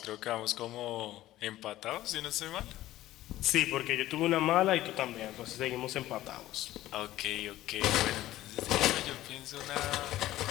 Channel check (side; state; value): right; quieter; 15.1 dB